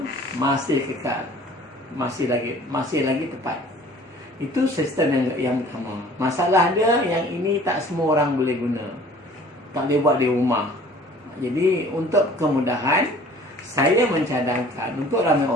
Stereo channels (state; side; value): normal; both; correlation 0.50